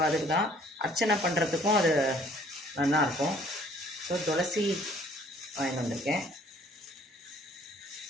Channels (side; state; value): both; normal; correlation 0.58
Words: அதுக்கு தான் அர்ச்சனை பண்ணுறதுக்கும் அது நல்லாயிருக்கும். ஸோ துளசி வாங்கிட்டு வந்திருக்கேன்.